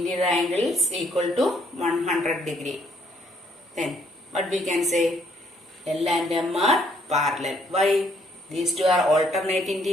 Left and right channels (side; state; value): both; normal; correlation 0.68